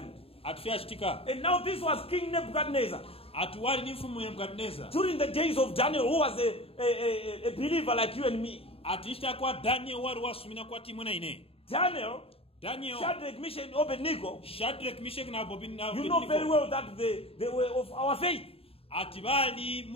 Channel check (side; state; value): right; late; 0.28 ms